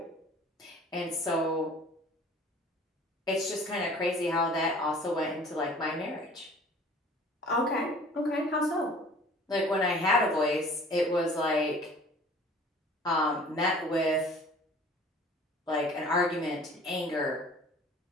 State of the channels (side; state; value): both; normal; correlation 0.49